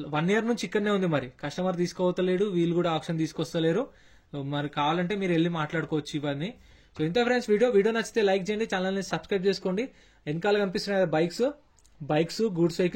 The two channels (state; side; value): identical; both; correlation 1.00